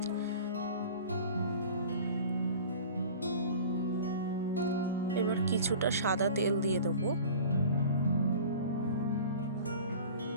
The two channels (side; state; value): both; inverted; correlation -0.41